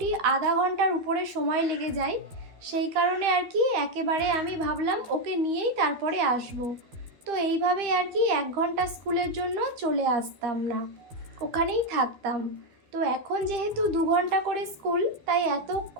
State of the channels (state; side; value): late; left; 13 ms